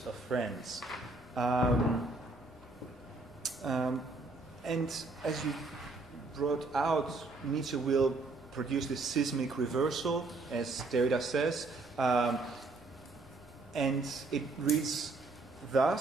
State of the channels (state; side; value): quieter; left; 3.3 dB